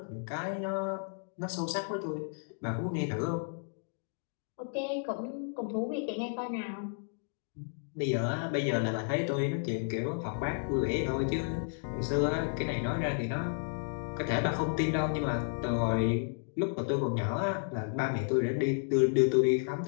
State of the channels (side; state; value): right; silent; digital silence